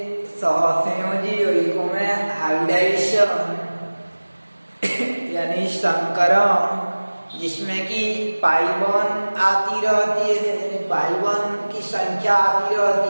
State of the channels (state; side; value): inverted; both; correlation -1.00